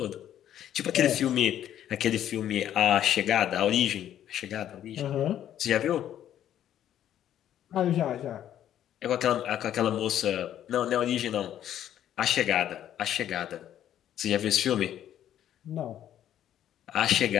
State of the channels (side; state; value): right; quieter; 11.0 dB